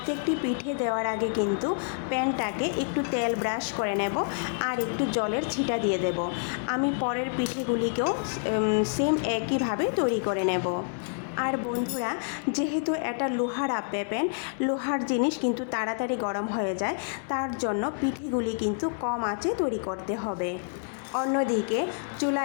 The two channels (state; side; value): silent; right; digital silence